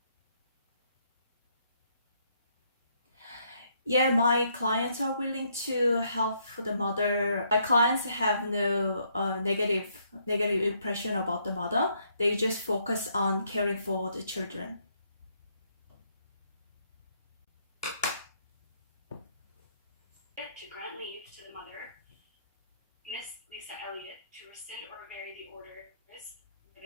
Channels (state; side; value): inverted; both; correlation -0.71